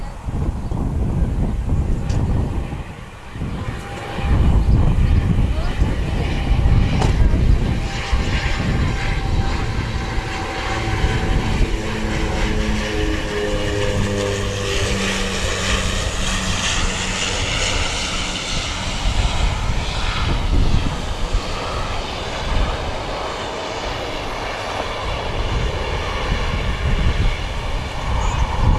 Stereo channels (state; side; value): identical; both; correlation 1.00